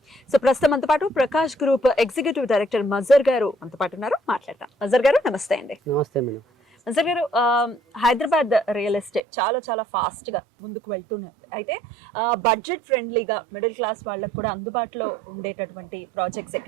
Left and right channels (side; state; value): left; drops out; at 9.2 s